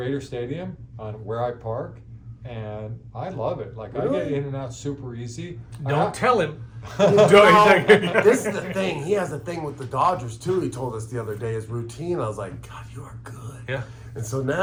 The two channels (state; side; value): identical; both; correlation 1.00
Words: Stadium on where I park, and I love it. Like, I get in and out super easy. Don't tell him. This is the thing. He has a thing with the Dodgers too. He told us the other day his routine. I was like, God, you are good. Yeah. And so